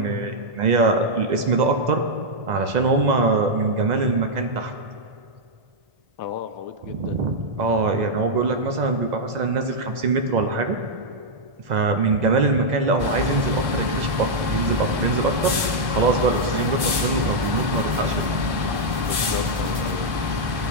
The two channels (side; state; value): left; late; 1.1 ms